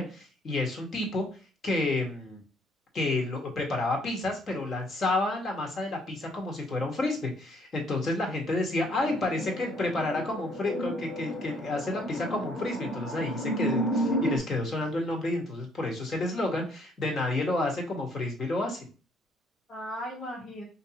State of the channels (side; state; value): both; normal; correlation 0.66